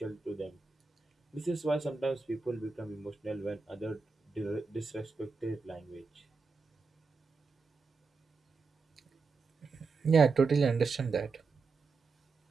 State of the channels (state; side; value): quieter; left; 4.5 dB